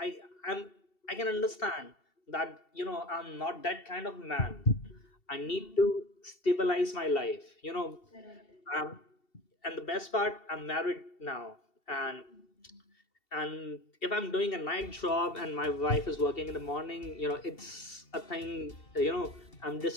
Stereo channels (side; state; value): right; late; 2.7 ms